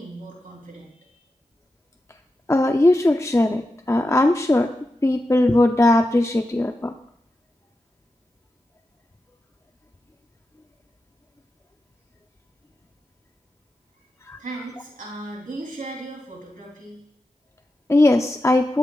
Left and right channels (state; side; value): normal; both; correlation 0.90